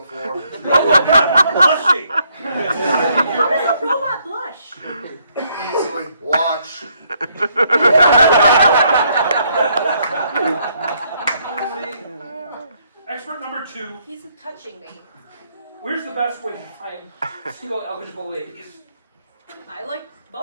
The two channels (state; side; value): inverted; both; correlation -0.71